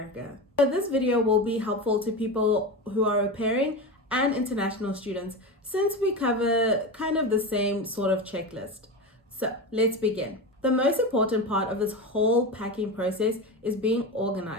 So this video will be helpful to people who are au pairing and international students since we cover kind of the same sort of checklist. So let's begin. The most important part of this whole packing process is being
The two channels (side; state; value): both; normal; correlation 0.22